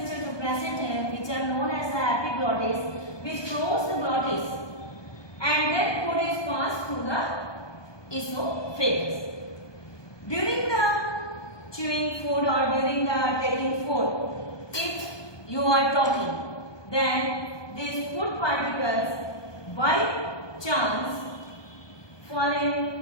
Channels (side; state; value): right; late; 1.2 ms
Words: जो present है, which are known as the epiglottis, which close the glottis, and then food is passed through the esophagus. During the chewing food or during the taking food, if you are talking, then these food particles by chance